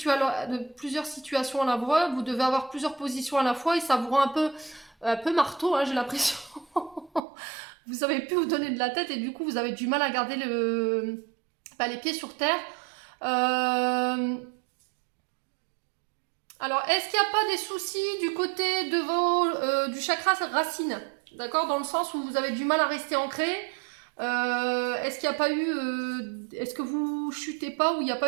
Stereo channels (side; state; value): left; drops out; at 7.2 s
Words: à la fois, vous devez avoir plusieurs positions à la fois et ça vous rend un peu marteau, hein, j'ai l'impression. Vous savez plus vous donner de la tête et du coup vous avez du mal à garder les pieds sur terre. Alors, est-ce qu'il n'y a pas des soucis du côté de du chakra racine? D'accord? Dans le sens où vous avez du mal à rester ancré. Est-ce qu'il n'y a pas eu... est-ce que vous chutez pas ou il n'y a